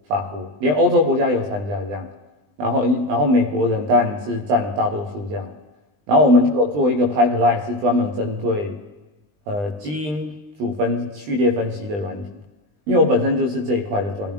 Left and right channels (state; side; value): late; left; 20 ms